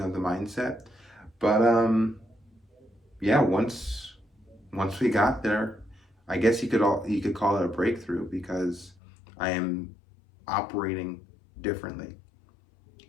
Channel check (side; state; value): right; drops out; at 9.0 s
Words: of the mindset. But yeah, once we got there, I guess you could call it a breakthrough, because I am operating differently.